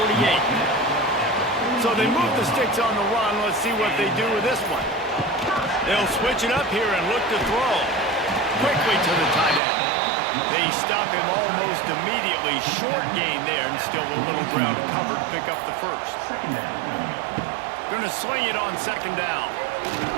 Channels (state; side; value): drops out; left; at 9.6 s